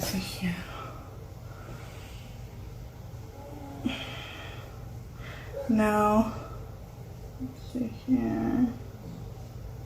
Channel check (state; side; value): identical; both; correlation 1.00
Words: see here. Now, let's see here.